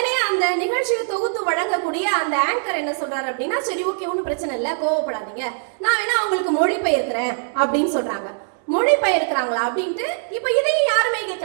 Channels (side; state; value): left; silent; digital silence